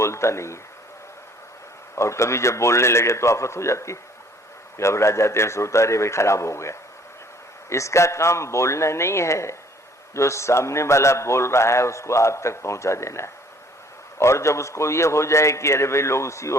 नहीं है। और कभी जब बोलने लगे तो आफत हो जाती है, घबरा जाते हैं, सोता रे भाई खराब हो गया। इसका काम बोलना नहीं है, जो सामने वाला बोल रहा है उसको आप तक पहुंचा देना है। और जब उसको ये हो जाए कि अरे भाई लोग उसी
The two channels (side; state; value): both; normal; correlation 0.58